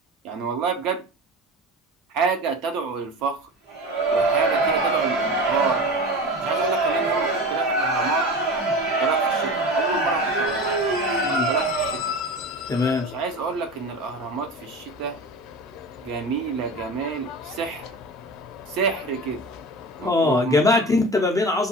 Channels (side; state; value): both; normal; correlation 0.31